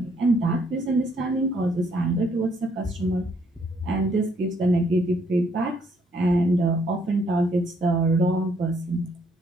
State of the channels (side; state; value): both; normal; correlation 0.68